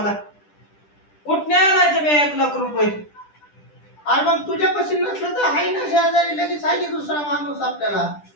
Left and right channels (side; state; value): right; late; 10 ms